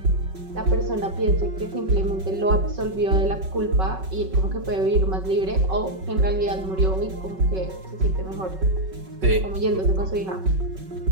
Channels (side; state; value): left; late; 5.4 ms